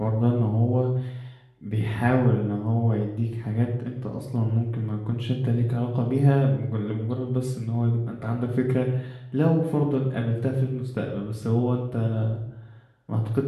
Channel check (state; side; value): identical; both; correlation 1.00